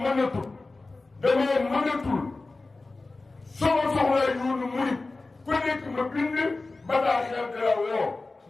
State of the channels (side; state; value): right; quieter; 3.4 dB